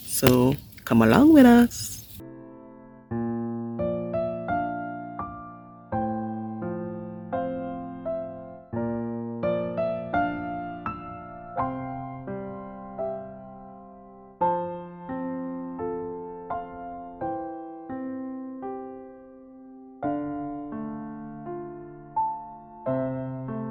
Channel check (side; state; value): both; identical; correlation 1.00